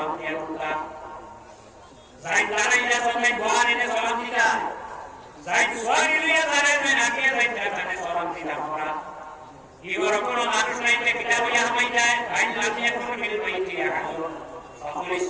দিয়ে ঢুকা যাই দাঁড়াইয়া সবাই বহারিনে সালাম দিতা যাই সোয়ারি লিয়া দাঁড়াইবেন আগে যাইতে তাহলে সালাম দিতা আমরা ইওর কোনো মানুষ নাইতে কিতাব ইয়া হামাই যায় ভাই লামি এখন মিল বাইতি আহাদুন ফাকুল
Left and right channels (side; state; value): both; identical; correlation 1.00